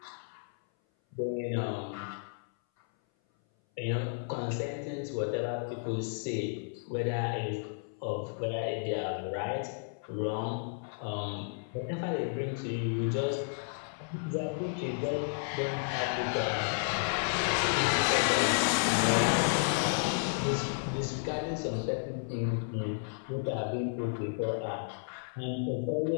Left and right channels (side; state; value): right; silent; 56 dB below the other